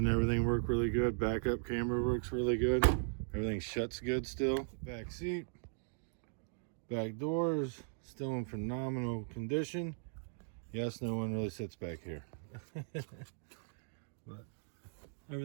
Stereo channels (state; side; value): silent; left; digital silence